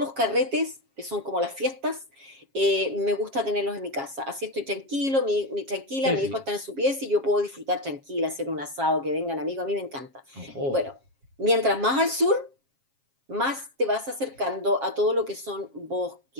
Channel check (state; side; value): late; left; 7.4 ms